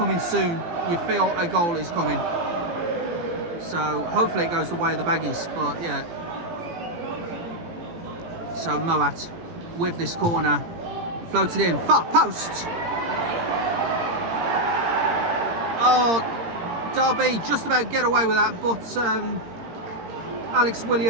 soon. You feel a goal is coming. So hopefully it goes the way of the Baggies, but yeah. So Moat with this corner, floated in, far post. Oh, Derby just about get away with that, but Alex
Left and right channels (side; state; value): left; late; 17 ms